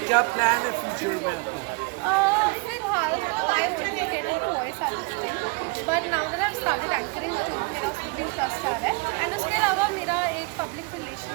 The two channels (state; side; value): quieter; left; 29.6 dB